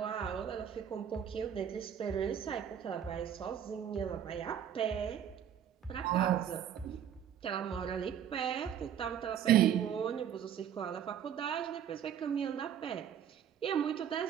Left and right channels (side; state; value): left; quieter; 9.3 dB